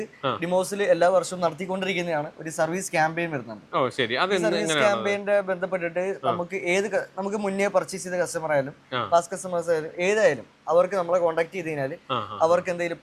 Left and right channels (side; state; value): both; identical; correlation 1.00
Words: ഡിമോസിൽ എല്ലാ വർഷവും നടത്തിക്കൊണ്ടിരിക്കുന്നതാണ് ഒരു സർവീസ് ക്യാമ്പയിൻ വരുന്നുണ്ട്. സർവീസ് ക്യാമ്പയിന്റെ ബന്ധപ്പെട്ടിട്ട് നമുക്ക് മുന്നേ പർച്ചേസ് ചെയ്ത കസ്റ്റമർ ആയാലും പാസ്റ്റ് കസ്റ്റമേഴ്സ് ആയാലും ഏതായാലും അവർക്ക് നമ്മളെ കോൺടാക്ട് ചെയ്ത് കഴിഞ്ഞാൽ അവർക്ക് എന്തെങ്കിലും